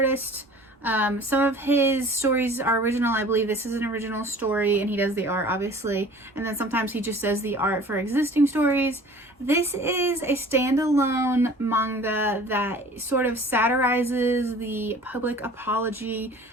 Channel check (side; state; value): both; normal; correlation 0.46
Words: Some of his stories are original. I believe this is an original story, and he does the art, obviously. And then sometimes he just does the art for existing stories. This is a standalone manga that sort of satirizes the public apology